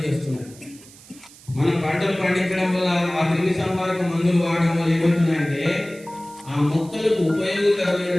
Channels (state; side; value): noise; right; hiss, 22 dB below the sound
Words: చేస్తున్నాయి. మనం పంటలు పండించడం వల్ల ఆ క్రిమి సంహారక మందులు వాడడం వల్ల ఏమవుతున్నాయంటే ఆ మొక్కలకు